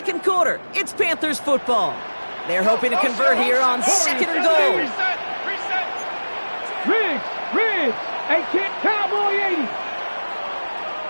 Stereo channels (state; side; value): inverted; both; correlation -1.00